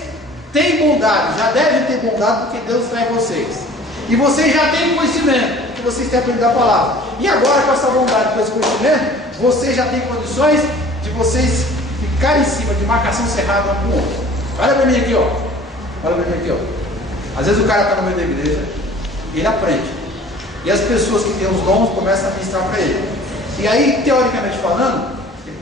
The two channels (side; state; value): both; normal; correlation 0.48